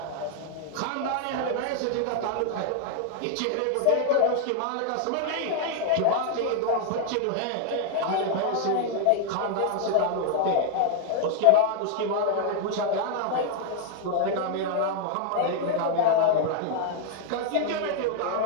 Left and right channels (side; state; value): both; different; correlation 0.00